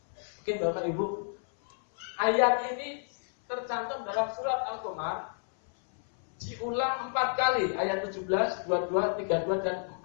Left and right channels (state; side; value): silent; right; 57 dB below the other